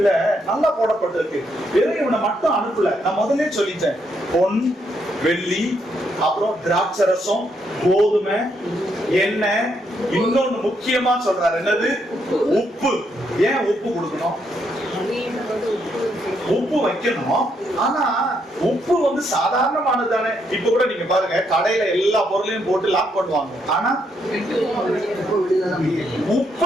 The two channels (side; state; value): both; normal; correlation 0.76